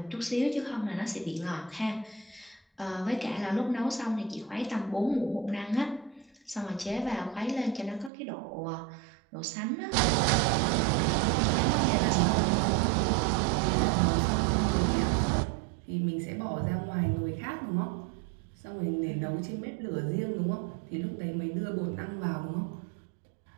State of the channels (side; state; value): left; drops out; at 8.1 s